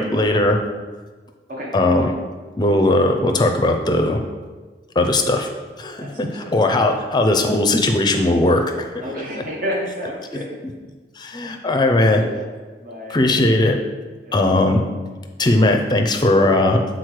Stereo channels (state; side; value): normal; both; correlation 0.54